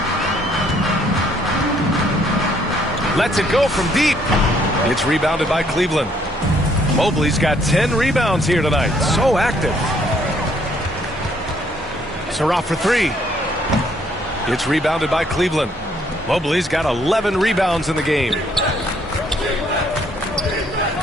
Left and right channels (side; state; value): both; normal; correlation 0.66